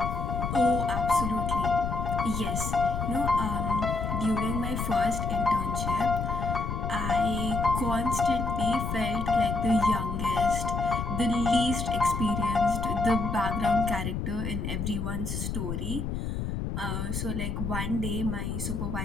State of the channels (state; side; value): noise; left; rumble, 3 dB below the sound